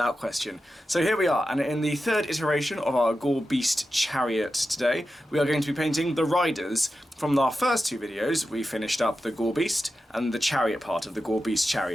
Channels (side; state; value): both; normal; correlation 0.91